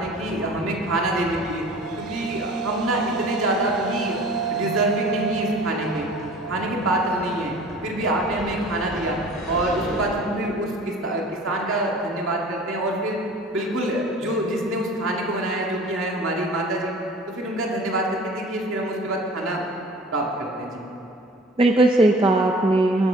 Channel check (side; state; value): both; normal; correlation 0.45